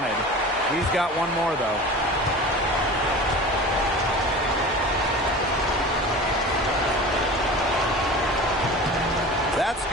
He's got one more, though. That's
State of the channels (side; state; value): both; normal; correlation 0.36